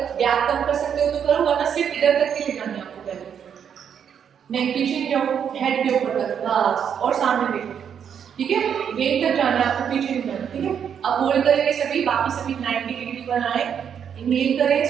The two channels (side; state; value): left; quieter; 8.0 dB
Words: गैप कम कर सकते हो तो करो, वरना सिर्फ इधर तक के ले जाना है आपको बेल्ट, नेक पीछे जाओ, हेड के ऊपर तक, बस, और सामने देखो, ठीक है, यही तक जाना है आपको, पीछे नहीं जाना, ठीक है। अब होल्ड करेंगे सभी, बाकी सभी 90 डिग्री पर आए, इनहेल करें,